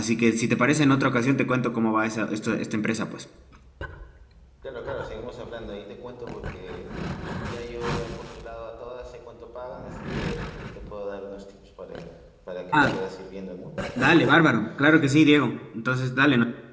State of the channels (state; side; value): identical; both; correlation 1.00